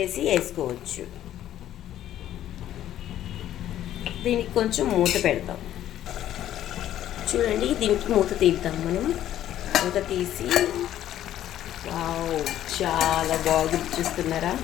వేసుకోవచ్చు. దీనికి కొంచెం మూత పెడతాం. చూడండి, దీనికి మూత తీద్దాం మనం. మూత తీసి, వావ్, చాలా బాగుంది.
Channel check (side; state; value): right; quieter; 12.1 dB